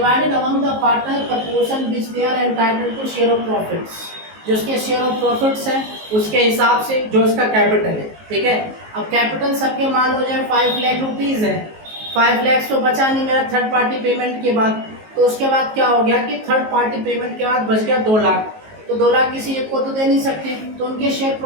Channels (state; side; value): late; left; 19 ms